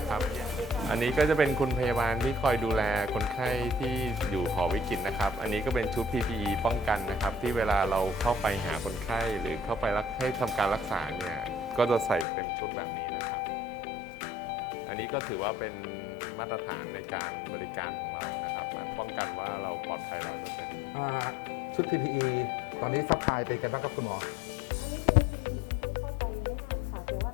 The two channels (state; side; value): drops out; right; at 12.2 s